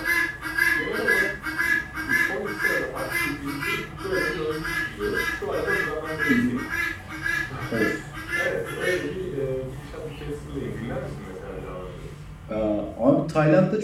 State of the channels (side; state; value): both; identical; correlation 1.00